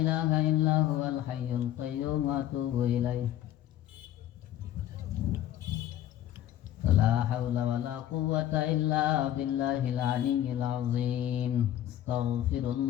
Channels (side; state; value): right; quieter; 12.2 dB